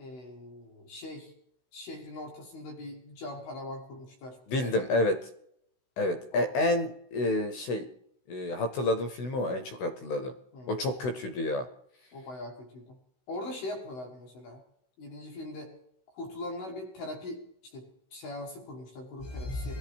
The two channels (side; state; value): right; late; 16 ms